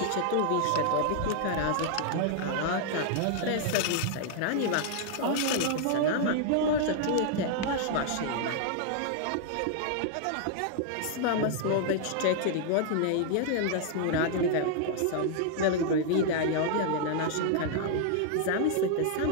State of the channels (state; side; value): different; both; correlation 0.00